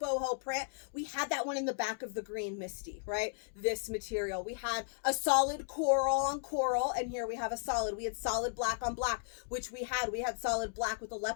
print. We had that one in the back of the green Misty, right? This material. We had a solid coral on coral, and here we have a solid. We had solid black on black, which we had solid black with a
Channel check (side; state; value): right; silent; digital silence